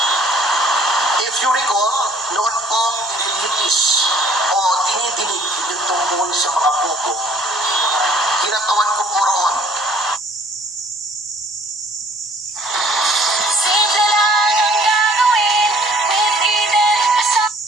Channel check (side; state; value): both; normal; correlation 0.56